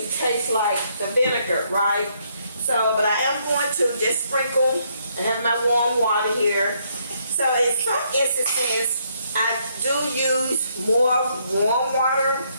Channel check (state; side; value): inverted; both; correlation -0.72